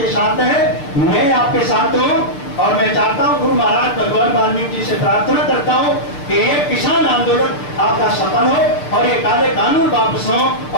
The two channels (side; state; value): right; late; 6.8 ms